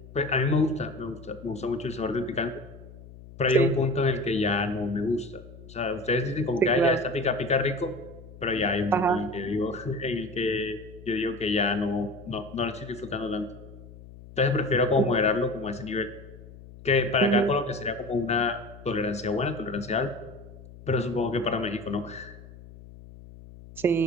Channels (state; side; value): noise; left; hum, 18 dB below the sound